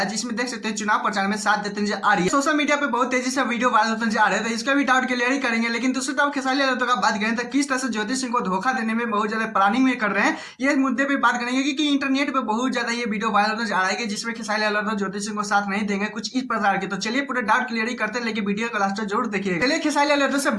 है, जिसमें देख सकते हैं चुनाव प्रचार में साथ देते नजर आ रही है। सोशल मीडिया पे बहुत तेजी से वीडियो वायरल होता नजर आ रहा है, तो इसका भी डाउट क्लियर ही करेंगे। लेकिन दूसरी तरफ खेसारी लाल यादव का बात करें तो किस तरह से ज्योति सिंह को धोखा देने में बहुत ज्यादा प्लानिंग में कर रहे हैं, ये मुद्दे पे बात करेंगे। क्योंकि इंटरनेट पे बहुत ज्यादा ये वीडियो वायरल नजर आ रहा है जिसमें खेसारी लाल यादव ज्योति सिंह को साथ नहीं देंगे, कुछ इस प्रकार के। तो चलिए पूरे डाउट क्लियर ही करते हैं, लेकिन वीडियो को लास्ट तक जरूर देखिए। चलिए खेसारी लाल यादव से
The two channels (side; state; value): both; identical; correlation 1.00